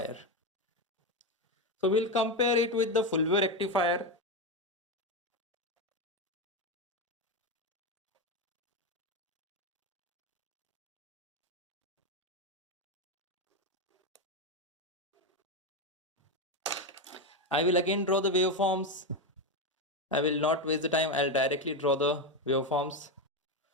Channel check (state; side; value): normal; both; correlation 0.11